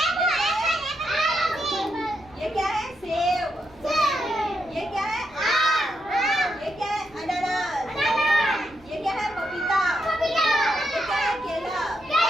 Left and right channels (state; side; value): noise; right; rumble, 26 dB below the sound